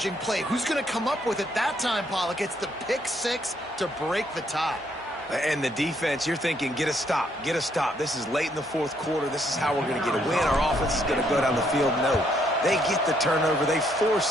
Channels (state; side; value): normal; both; correlation 0.71